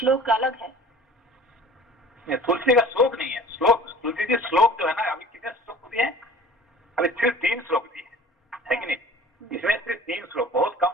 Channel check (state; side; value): normal; both; correlation 0.45